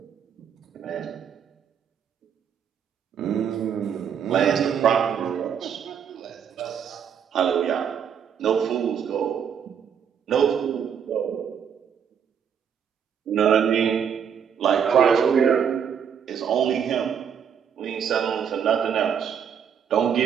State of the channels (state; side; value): quieter; left; 7.8 dB